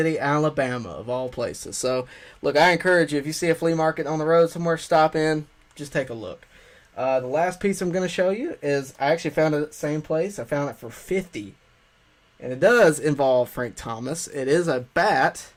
Alabama, of all places. So, look, I encourage you, if you see a flea market on the road somewhere, stop in, just take a look. The last piece I'm going to show you is, I actually found it at the same place. I found it for $50. And it does involve Frank Thomas. It is a bat,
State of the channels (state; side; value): identical; both; correlation 1.00